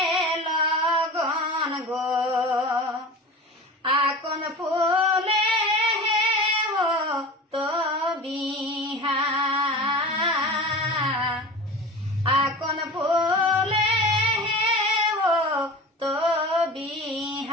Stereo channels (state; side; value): normal; both; correlation 0.34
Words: লগন গো আকন ফুলে ও তো বিহা আকন ফুলে ও তো